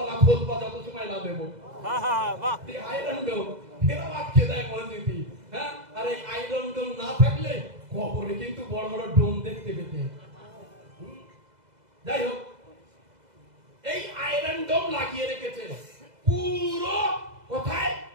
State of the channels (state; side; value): late; left; 2.0 ms